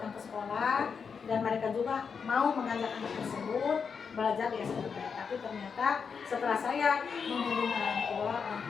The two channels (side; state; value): right; quieter; 6.0 dB